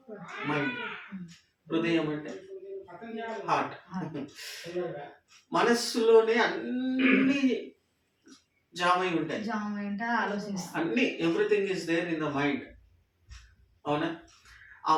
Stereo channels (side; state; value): both; identical; correlation 1.00